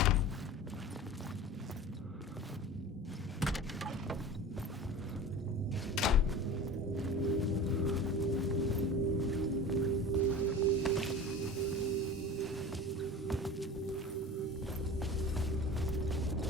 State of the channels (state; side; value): normal; both; correlation 0.35